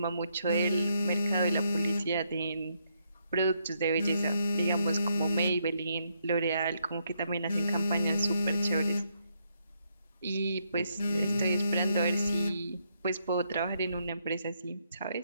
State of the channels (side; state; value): both; inverted; correlation -0.75